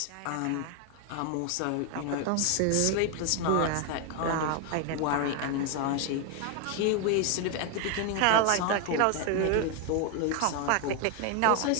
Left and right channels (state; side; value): different; both; correlation 0.01